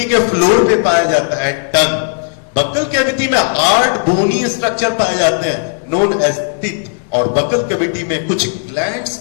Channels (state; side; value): silent; right; digital silence